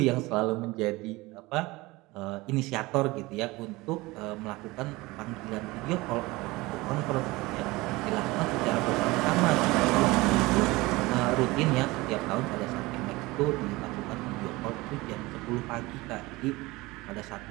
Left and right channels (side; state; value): left; quieter; 21.5 dB